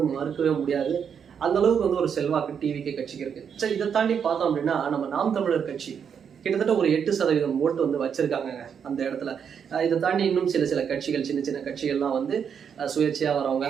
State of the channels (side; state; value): left; quieter; 7.4 dB